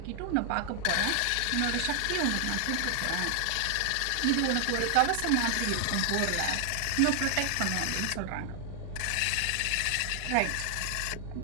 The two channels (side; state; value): both; different; correlation 0.00